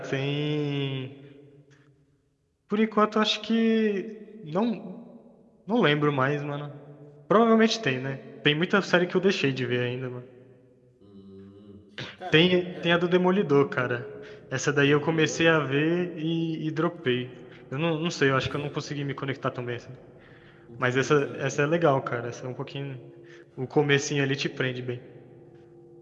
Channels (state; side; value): identical; both; correlation 1.00